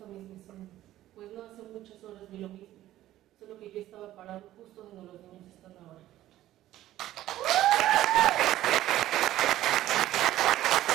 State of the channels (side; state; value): left; quieter; 14.2 dB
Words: misma escena, pues no hace muchas horas vi lo mismo, solo que yo estaba parado justo donde los niños están ahora.